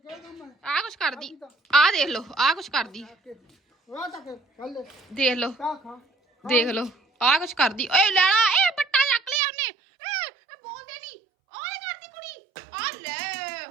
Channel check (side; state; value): left; drops out; at 9.4 s